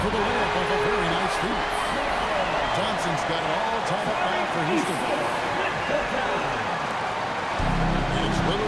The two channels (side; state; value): both; identical; correlation 1.00